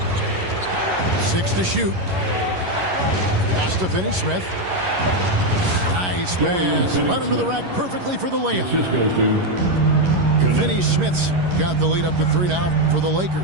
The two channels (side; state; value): left; late; 11 ms